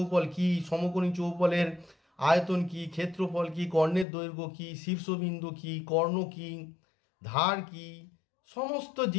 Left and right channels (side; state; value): right; drops out; at 4.0 s